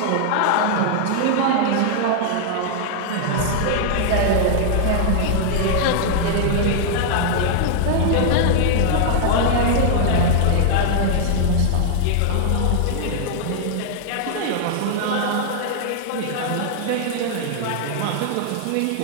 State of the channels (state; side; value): different; both; correlation 0.00